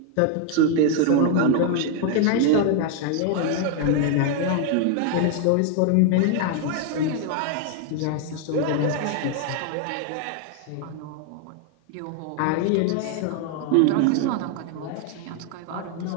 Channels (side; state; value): both; different; correlation 0.00